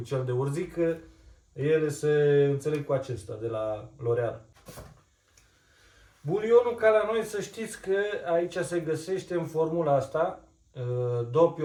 cel de urzică, ele se înțeleg cu acesta de la L'Oreal. Bulionul, ca la noi, să știți că aici se găsește în formula asta,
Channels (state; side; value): identical; both; correlation 1.00